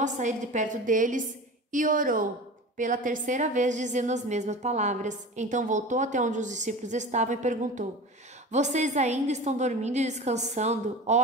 sair de perto deles e orou pela 3ª vez, dizendo as mesmas palavras. Então voltou até onde os discípulos estavam e perguntou: vocês ainda estão dormindo e descansando?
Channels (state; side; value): normal; both; correlation 0.33